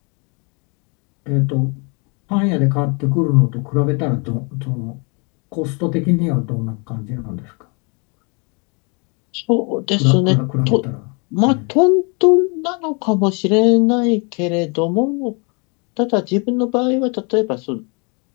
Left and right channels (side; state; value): right; quieter; 33.5 dB